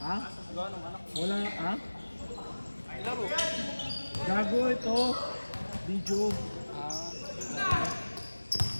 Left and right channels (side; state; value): both; inverted; correlation -1.00